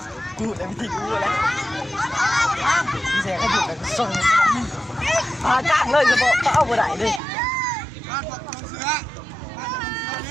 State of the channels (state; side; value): drops out; left; at 7.2 s